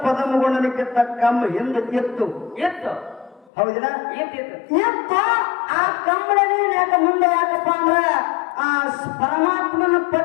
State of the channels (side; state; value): right; drops out; at 3.5 s